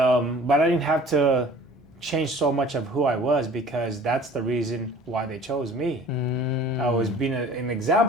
I didn't have to change so much of who I was, because that's the reason why they chose me. I was being an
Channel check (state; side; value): normal; both; correlation 0.48